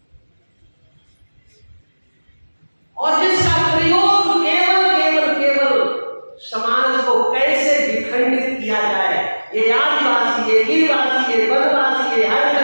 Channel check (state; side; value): inverted; both; correlation -1.00